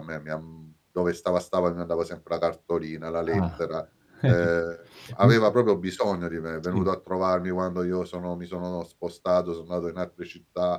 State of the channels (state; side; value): identical; both; correlation 1.00